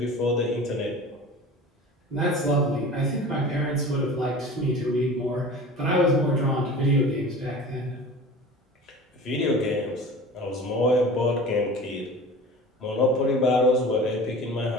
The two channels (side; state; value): both; normal; correlation 0.38